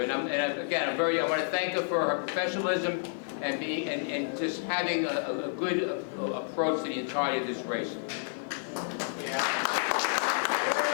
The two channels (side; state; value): right; silent; 58 dB below the other